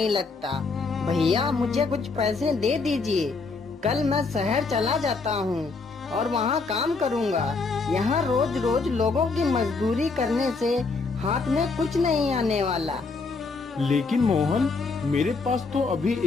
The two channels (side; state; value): right; quieter; 4.2 dB